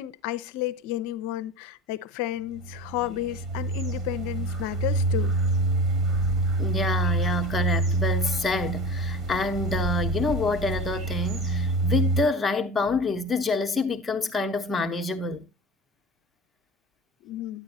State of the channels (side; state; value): both; normal; correlation 0.34